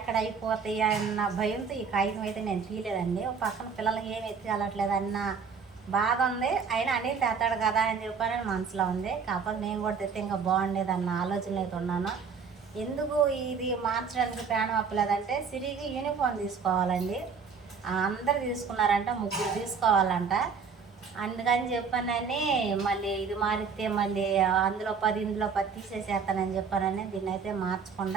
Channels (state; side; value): quieter; left; 5.8 dB